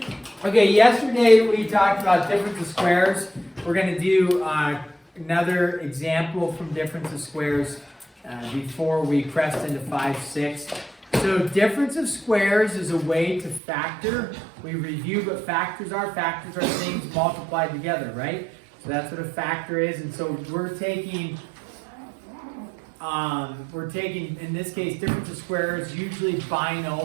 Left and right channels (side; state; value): left; drops out; at 13.6 s